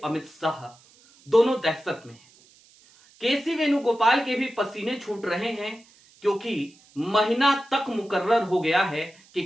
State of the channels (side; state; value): right; noise; hiss, 28 dB below the sound